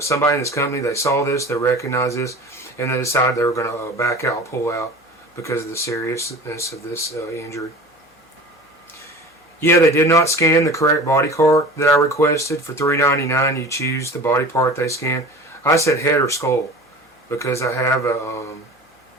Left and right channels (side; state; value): both; normal; correlation 0.38